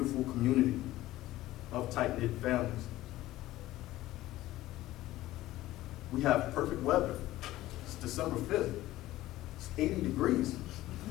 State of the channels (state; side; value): quieter; right; 16.0 dB